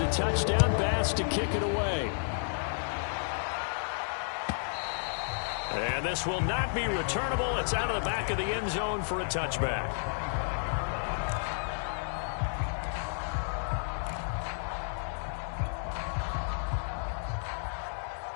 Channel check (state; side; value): silent; right; digital silence